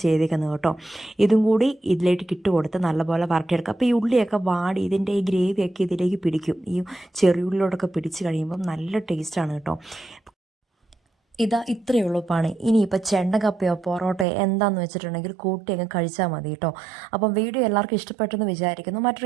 ചെയ്തേക്കുന്നത് കേട്ടോ. ഇതും കൂടി ഇതിലേക്ക് ഇട്ട് കൊടുത്ത് നല്ലപോലെ വരട്ടിയെടുക്കുക. അപ്പോൾ ഈ ഉള്ളിയൊക്കെ വാടി ഇതിൻ്റെ ഈ ഗ്രേവിയൊക്കെ ഇതിലേക്ക് പിടിക്കും. ഈ ചെറിയുള്ളിയോടൊക്കെ പിടിച്ച് കഴിയുമ്പം നല്ല ടേസ്റ്റാണ് കേട്ടോ. ഇത്രയേ ഉള്ളൂ പണി. ഇനിയിപ്പോൾ ചെണ്ടക്കപ്പയോ പൊറോട്ടയോ എന്താണെന്ന് വെച്ചിട്ടുണ്ടെങ്കിൽ കൂട്ടി അങ്ങ് കഴിച്ചാൽ മതി കേട്ടോ. അപ്പം വീഡിയോ എല്ലാവർക്കും ഇഷ്ടപ്പെട്ടെന്ന് വിചാരിക്കുന്നു.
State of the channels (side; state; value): left; drops out; at 14.2 s